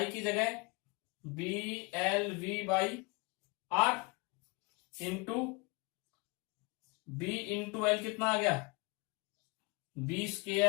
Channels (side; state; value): right; quieter; 28.1 dB